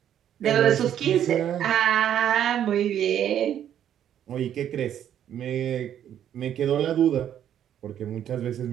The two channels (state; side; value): quieter; left; 10.2 dB